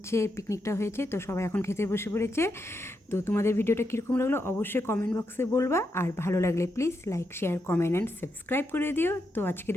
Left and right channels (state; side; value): normal; both; correlation 0.83